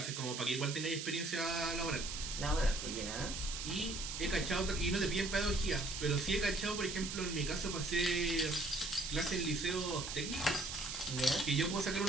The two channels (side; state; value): right; noise; hiss, 5 dB below the sound